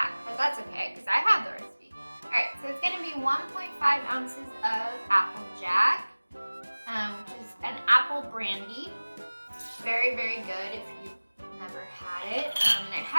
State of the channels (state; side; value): inverted; both; correlation -1.00